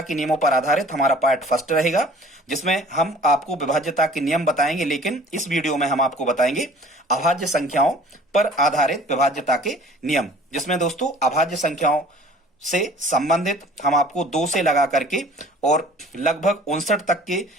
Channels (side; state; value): both; normal; correlation 0.49